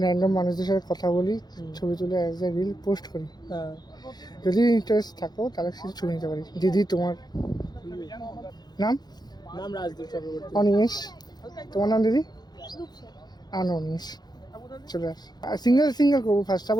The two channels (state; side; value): late; right; 0.20 ms